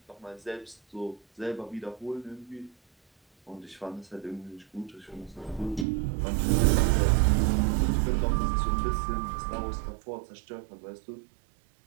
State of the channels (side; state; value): left; drops out; at 5.9 s